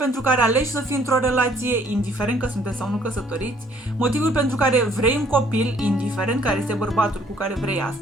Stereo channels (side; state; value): both; normal; correlation 0.62